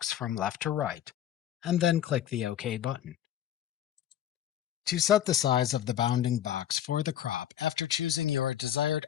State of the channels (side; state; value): right; quieter; 11.0 dB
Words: from left to right, and then click the OK button. To set the size of the bounding box for the crop after choosing your desired